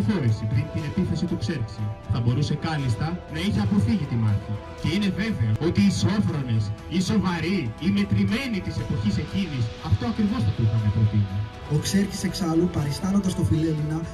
πριν την επίθεση του Ξέρξη. Θα μπορούσε κάλλιστα να είχε αποφύγει τη μάχη. Και είναι βέβαιο ότι οι σόφρονες, οι σοβαροί, οι μετρημένοι της εποχής εκείνης αυτό ακριβώς θα του είχαν προτείνει. Ο Ξέρκης εξάλλου, παριστάνοντας το Φιλέλληνα,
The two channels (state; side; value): identical; both; correlation 1.00